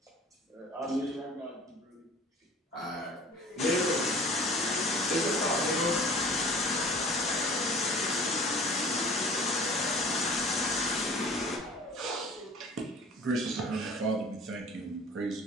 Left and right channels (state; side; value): normal; both; correlation 0.45